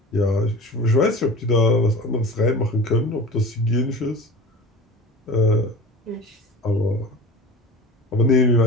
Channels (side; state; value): both; normal; correlation 0.36